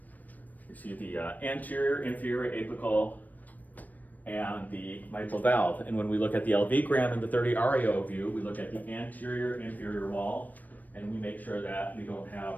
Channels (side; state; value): right; late; 0.083 ms